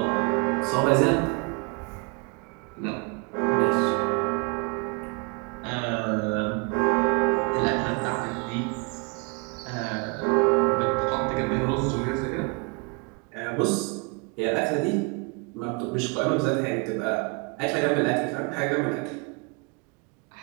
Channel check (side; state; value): left; quieter; 32.0 dB